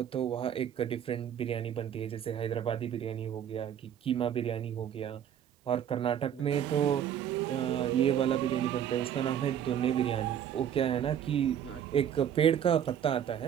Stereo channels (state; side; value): quieter; left; 9.5 dB